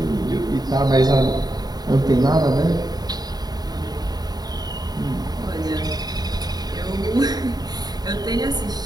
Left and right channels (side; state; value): left; late; 0.19 ms